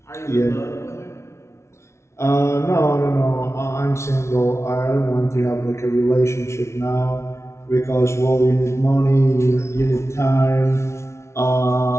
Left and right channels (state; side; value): late; right; 0.13 ms